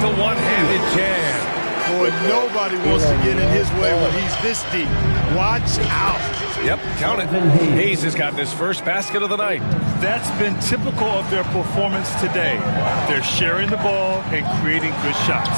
one-handed jam. Boy, nobody wants to get in his way when he's this deep. Watch out. Yep, count it. Hayes has gotten his first basket of the night. That's been typical of their performance today. They're sharing the ball and creating good shots.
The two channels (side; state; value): both; inverted; correlation -1.00